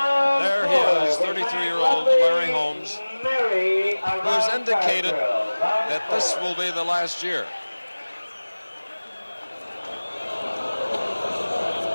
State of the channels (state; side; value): inverted; both; correlation -1.00